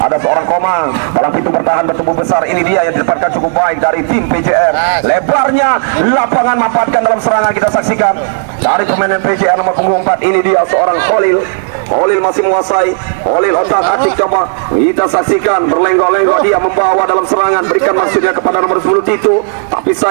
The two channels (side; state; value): left; silent; digital silence